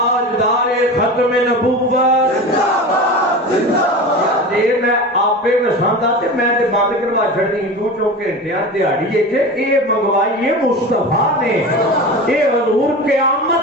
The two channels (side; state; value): both; normal; correlation 0.30